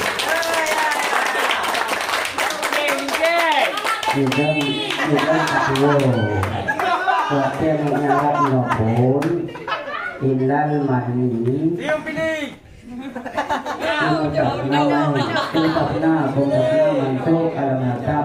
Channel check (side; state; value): both; identical; correlation 1.00